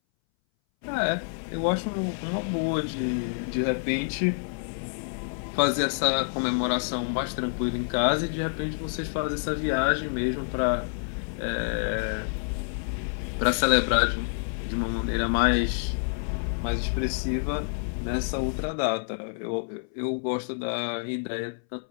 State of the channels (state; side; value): silent; right; 60 dB below the other